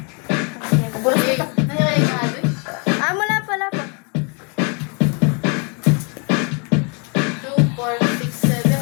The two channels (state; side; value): quieter; right; 35.4 dB